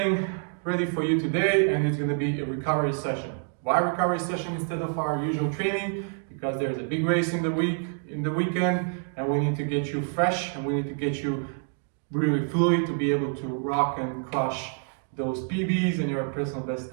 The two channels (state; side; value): silent; left; 57 dB below the other